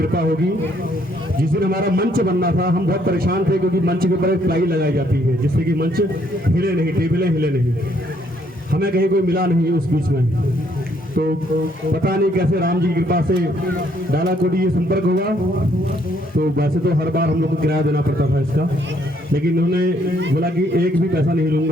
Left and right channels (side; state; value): both; normal; correlation 0.68